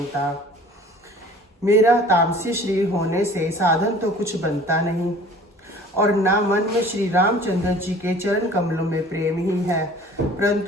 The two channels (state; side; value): normal; both; correlation 0.48